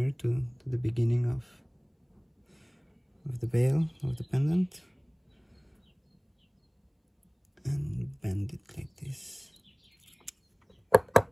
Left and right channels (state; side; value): identical; both; correlation 1.00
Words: to the beginning of the bale, of the pendant, and bend it like this.